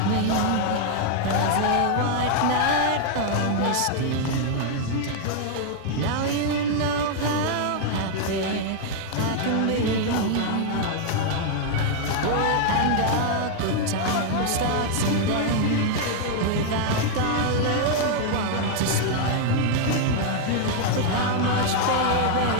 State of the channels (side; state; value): both; different; correlation 0.00